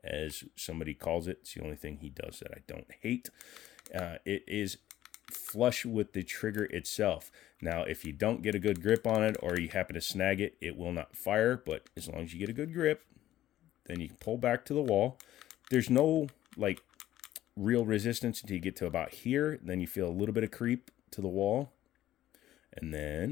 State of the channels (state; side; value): quieter; right; 13.5 dB